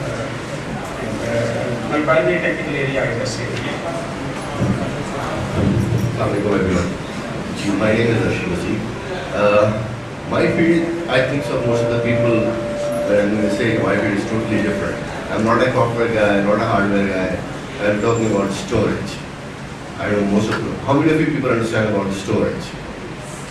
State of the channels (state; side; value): identical; both; correlation 1.00